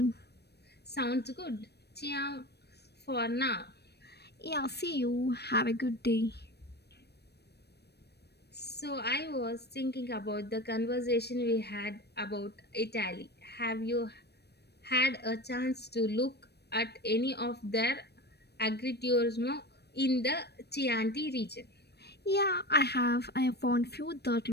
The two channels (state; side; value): late; right; 0.48 ms